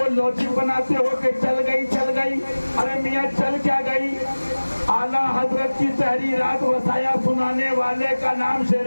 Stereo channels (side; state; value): both; inverted; correlation -1.00